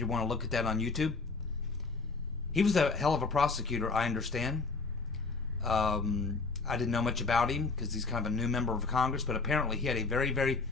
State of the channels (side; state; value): right; quieter; 4.1 dB